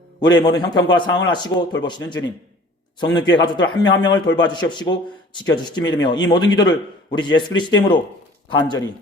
우리의 모든 형편과 상황을 아시고 돌보시는 주님, 성령교회 가족들 한 명 한 명을 돌봐 주시옵시고 지켜주시기 믿으며 이 모든 기도를 우리 주 예수 그리스도 이름으로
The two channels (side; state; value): both; normal; correlation 0.49